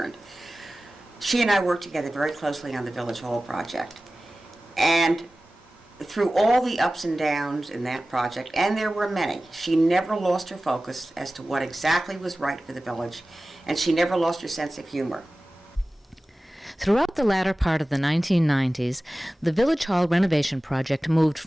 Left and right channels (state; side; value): normal; both; correlation 0.96